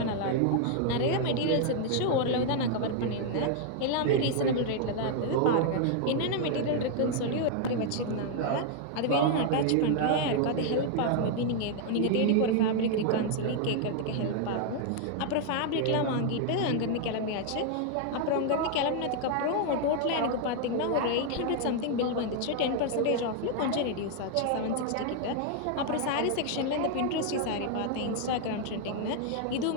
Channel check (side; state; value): both; different; correlation 0.00